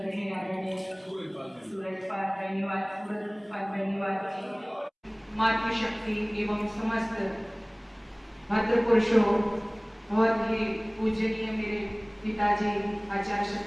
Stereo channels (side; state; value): both; identical; correlation 1.00